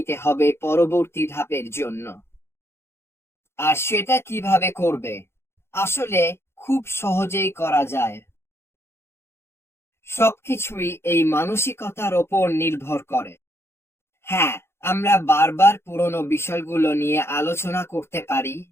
হবে পরবর্তী ধাপের জন্য। আর সেটা কিভাবে করবে? আসলে খুব সহজেই করা যায়। সবকিছুই এই মানসিকতার ওপর নির্ভর করে। হ্যাঁ, আমরা বারবার পুরনো বিষয়গুলো নিয়ে আলোচনা করতে পারি।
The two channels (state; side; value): late; right; 0.12 ms